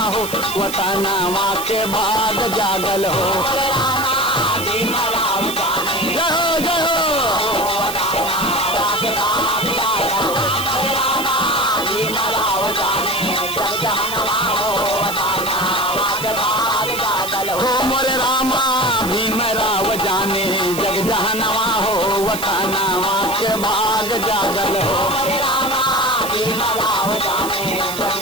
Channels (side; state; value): right; noise; hiss, 8 dB below the sound